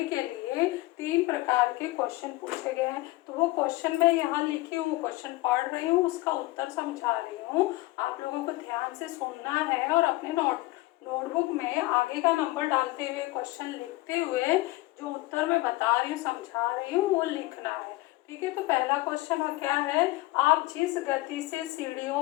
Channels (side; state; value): right; quieter; 19.9 dB